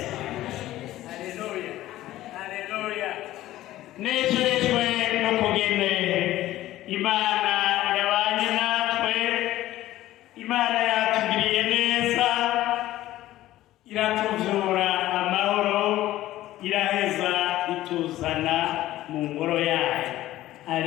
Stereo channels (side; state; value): right; quieter; 15.0 dB